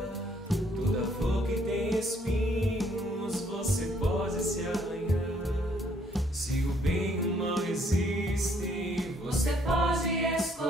Toda flor que tem espinhos você pode se arranhar. Se o bem e o mal existem, Você pode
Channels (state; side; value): normal; both; correlation 0.66